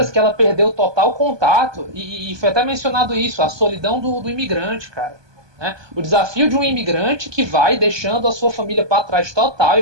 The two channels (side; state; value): left; late; 1.2 ms